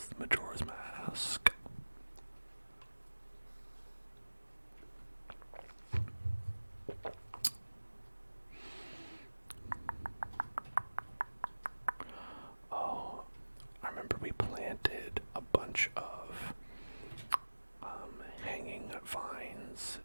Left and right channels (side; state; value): both; inverted; correlation -1.00